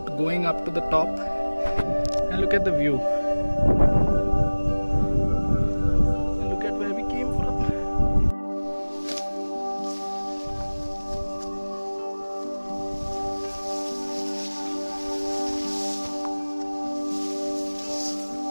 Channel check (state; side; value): inverted; both; correlation -1.00